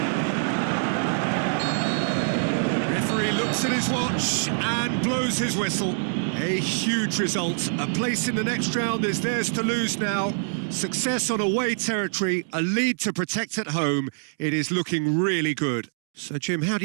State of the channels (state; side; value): silent; left; digital silence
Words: Referee looks at his watch and blows his whistle. A huge result. A place in the next round is theirs to lose now. Success on away territory, a lead to protect at home. It is looking really good. So, Jim, how do